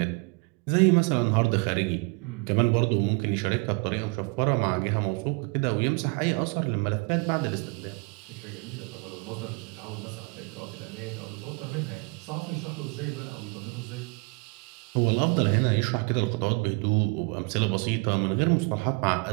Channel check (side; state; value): left; quieter; 31.4 dB